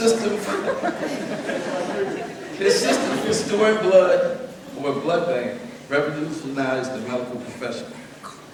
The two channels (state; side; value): identical; both; correlation 1.00